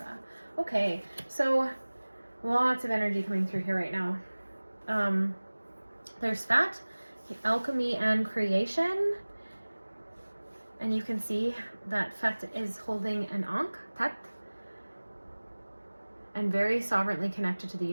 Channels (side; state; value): both; inverted; correlation -1.00